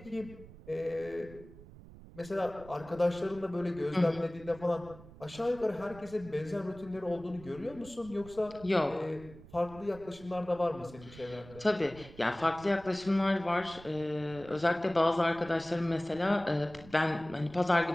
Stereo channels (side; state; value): right; noise; rumble, 18 dB below the sound